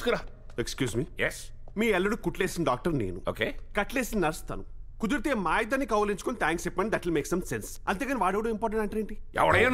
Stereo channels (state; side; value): identical; both; correlation 1.00